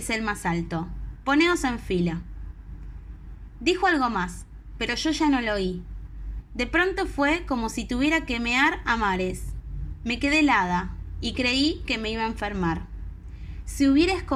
el más alto. Poneos en fila». Dijo algo más, pero yo ya no lo oí. De pronto fue como si tuviera que mear a mares. Me quedé helada y creí que me iba a enfermar. Si hubiera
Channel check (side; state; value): both; identical; correlation 1.00